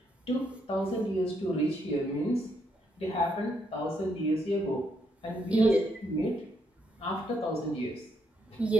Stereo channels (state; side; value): normal; both; correlation 0.76